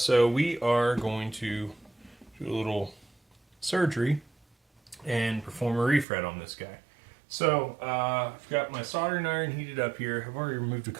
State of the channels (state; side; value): drops out; left; at 6.1 s